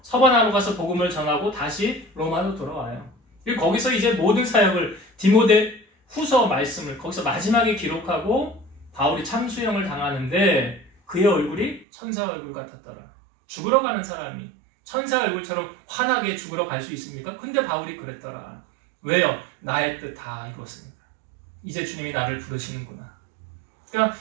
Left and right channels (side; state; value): left; drops out; at 11.9 s